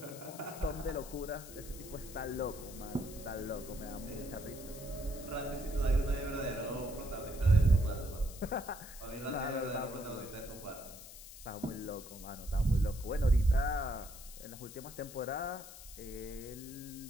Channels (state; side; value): noise; left; hiss, 14 dB below the sound